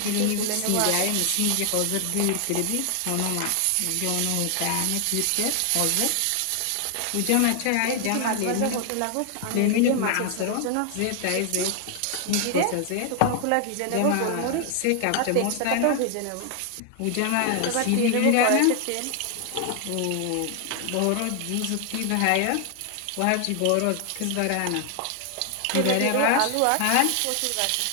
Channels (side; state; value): both; different; correlation 0.00